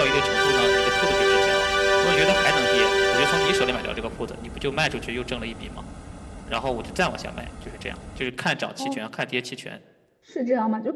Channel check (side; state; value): both; identical; correlation 1.00